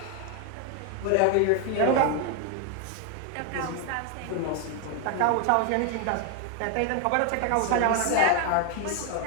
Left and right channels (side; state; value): both; different; correlation 0.00